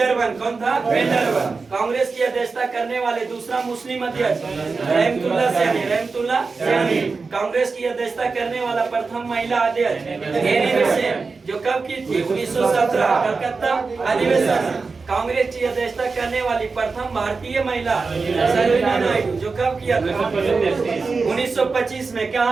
कौन था? बेंडरवन। कांग्रेस की अध्यक्षता करने वाले दूसरा मुस्लिम अध्यक्ष रहमतुल्लाह सैनी। रहमतुल्लाह सैनी। कांग्रेस की अध्यक्षता करने वाला प्रथम महिला अध्यक्ष एनी बेसेंट, जो कब की थी? 1917 कलकत्ता अधिवेशन। कांग्रेस की अध्यक्षता करने वाली प्रथम भारतीय महिला सरोजिनी नायडू, जो कब किया था? 1925 में।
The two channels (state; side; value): quieter; left; 4.4 dB